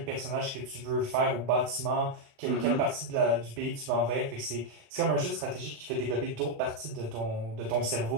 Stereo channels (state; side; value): late; left; 35 ms